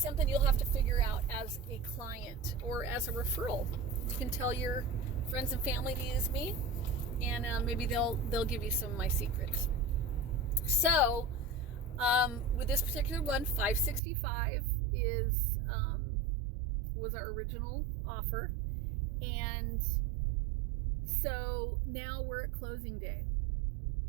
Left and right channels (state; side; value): drops out; left; at 14.0 s